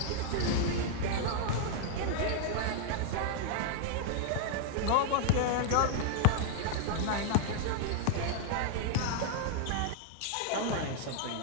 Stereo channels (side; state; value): both; different; correlation -0.01